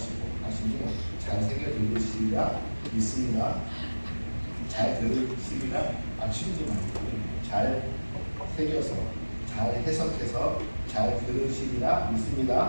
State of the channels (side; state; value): both; inverted; correlation -1.00